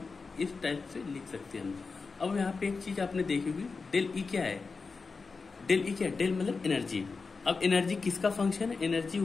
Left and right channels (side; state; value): right; quieter; 4.5 dB